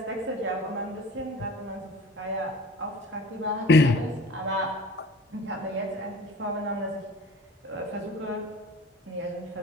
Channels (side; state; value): both; normal; correlation 0.43